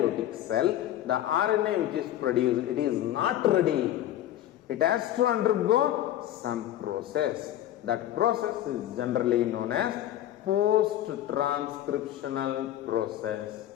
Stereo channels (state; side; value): quieter; right; 12.7 dB